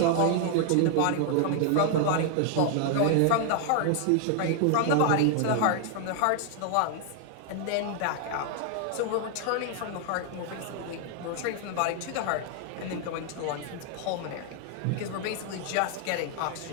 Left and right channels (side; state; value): both; different; correlation 0.00